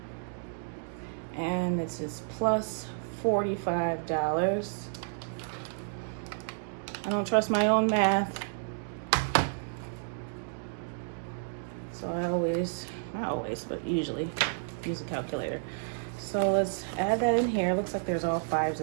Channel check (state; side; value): silent; left; digital silence